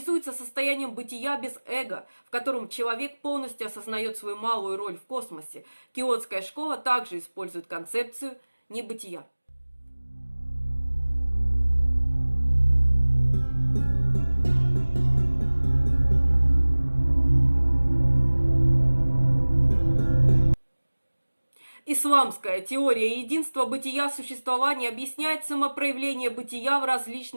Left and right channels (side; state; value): both; inverted; correlation -1.00